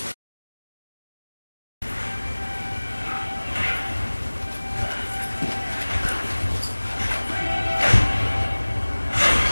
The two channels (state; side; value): inverted; both; correlation -1.00